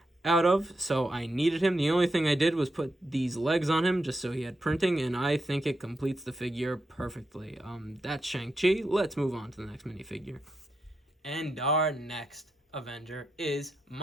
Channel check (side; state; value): both; normal; correlation 0.84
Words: out of, so I needed him. The only thing I did was put these legs on him just so he had printing, and I think it completes the figure perfectly. That's Shang-Chi. Let's move on to the next minifigure. And our next Avenger is